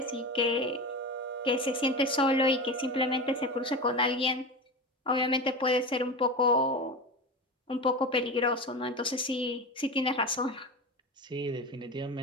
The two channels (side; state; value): both; normal; correlation 0.24